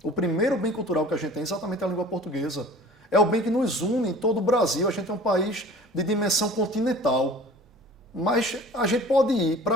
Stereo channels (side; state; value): both; normal; correlation 0.45